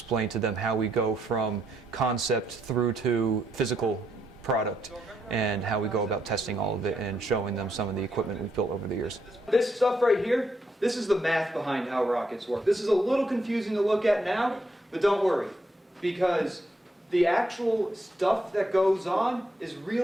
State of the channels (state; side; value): normal; both; correlation 0.77